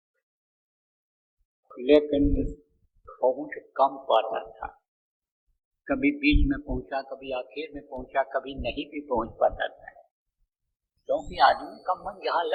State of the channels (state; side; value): identical; both; correlation 1.00